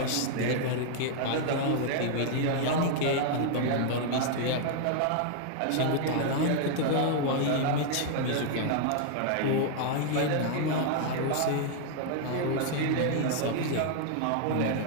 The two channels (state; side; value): different; both; correlation 0.00